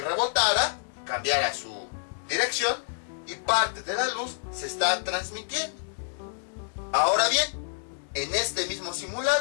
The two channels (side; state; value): right; silent; 59 dB below the other